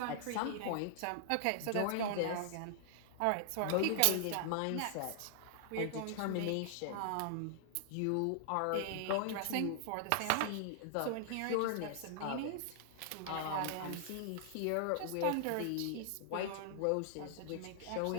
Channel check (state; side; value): different; both; correlation -0.01